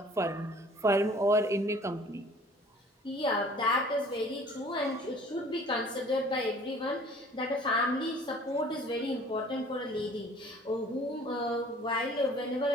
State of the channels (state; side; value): normal; both; correlation 0.51